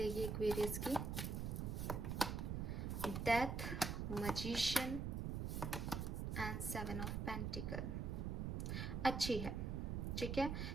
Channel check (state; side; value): noise; right; rumble, 1 dB below the sound